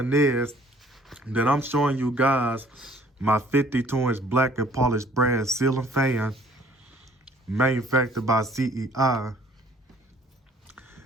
is that I'm showing you guys my 52-inch black and polished brass ceiling fan manufactured by CEI.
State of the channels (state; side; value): normal; both; correlation 0.57